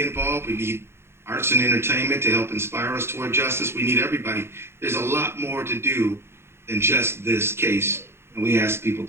involved. We need arts and entertainment to help inspire us toward justice. We need everybody. There's a lot more to do than just this case, and we ask people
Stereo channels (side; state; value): left; late; 0.12 ms